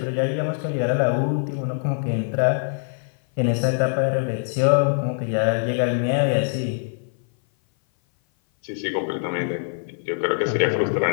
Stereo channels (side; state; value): right; silent; 57 dB below the other